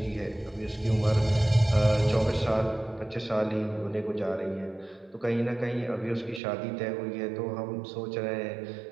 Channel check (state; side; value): drops out; left; at 6.4 s